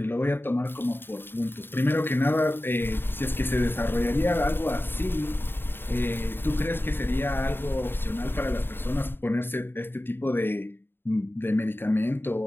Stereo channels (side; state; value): right; late; 0.10 ms